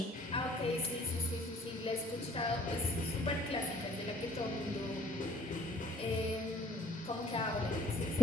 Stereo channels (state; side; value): normal; both; correlation 0.60